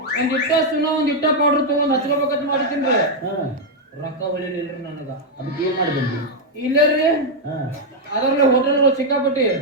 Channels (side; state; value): both; normal; correlation -0.01